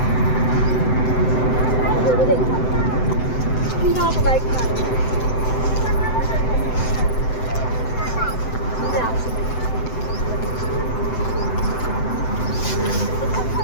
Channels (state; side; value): late; right; 7.8 ms